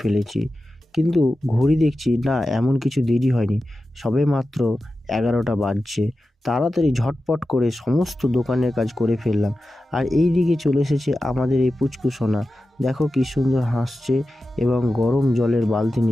ফেলেছি। কিন্তু ঘড়ি দেখছি না, এমন কিছু দেরি হয়নি, সবে মাত্র 11টা বাজছে। তাড়াতাড়ি ঝটপট করে সমস্ত দোকানের কাজ করে ফেললাম। আর এই দিকে চলে এসেছে আমাদের এই পুচকু সোনা। দেখো কি সুন্দর হাসছে এবং গরম জলের বালতি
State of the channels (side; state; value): both; normal; correlation 0.93